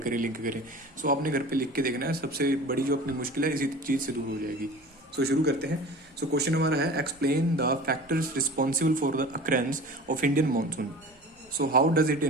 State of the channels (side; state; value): both; normal; correlation 0.39